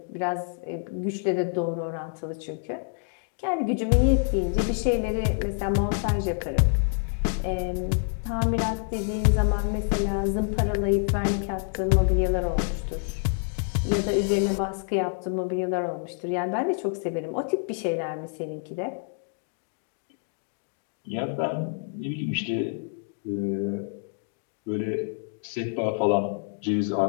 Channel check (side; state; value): right; silent; 60 dB below the other